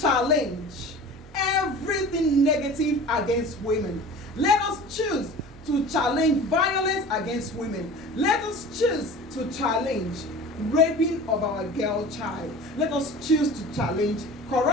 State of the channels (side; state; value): both; normal; correlation 0.39